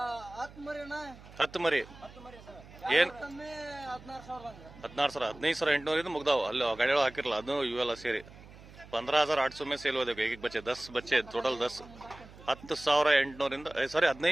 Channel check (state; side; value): noise; right; hum, 20 dB below the sound